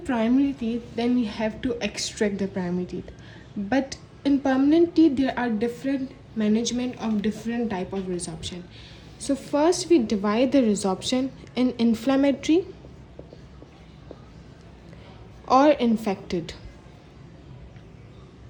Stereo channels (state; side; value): identical; both; correlation 1.00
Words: teeth, then we have to extract the primary teeth. But in permanent teeth, there are different management of different type of resorption. So first we divide the resorption in inflammatory or infected.